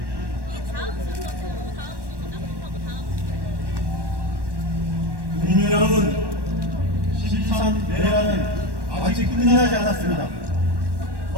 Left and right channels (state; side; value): late; left; 1.1 ms